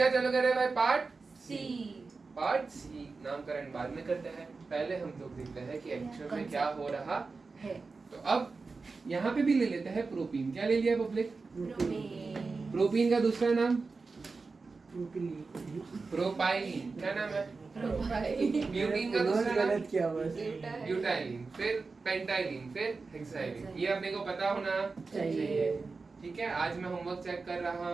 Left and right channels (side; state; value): left; quieter; 4.2 dB